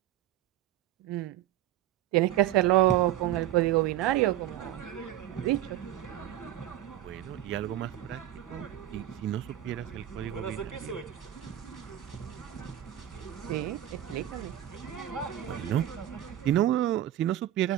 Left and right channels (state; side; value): quieter; left; 12.6 dB